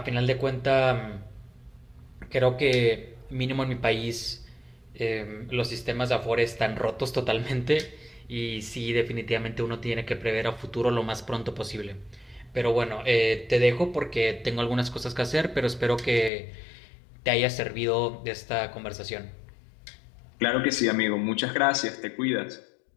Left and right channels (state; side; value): drops out; right; at 16.3 s